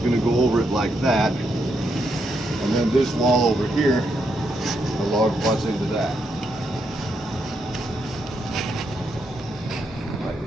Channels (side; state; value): both; normal; correlation 0.80